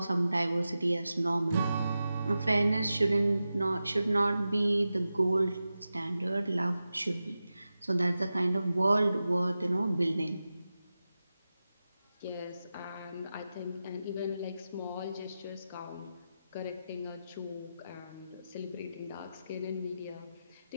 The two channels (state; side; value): inverted; both; correlation -0.93